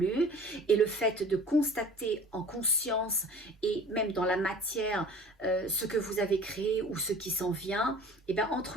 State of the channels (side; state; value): both; normal; correlation 0.44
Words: et le fait de constater en conscience et même dans la matière ce que vous avez créé ou ce qui s'en vient, et bien